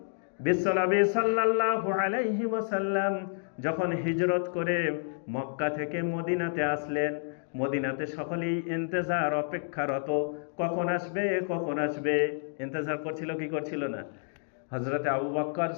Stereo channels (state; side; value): silent; right; digital silence